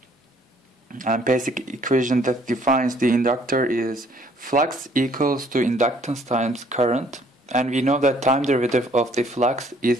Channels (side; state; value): both; normal; correlation 0.61